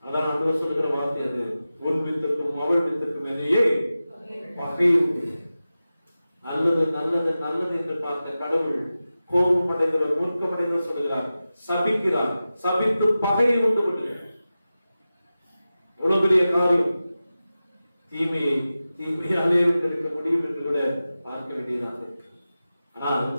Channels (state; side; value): inverted; both; correlation -0.94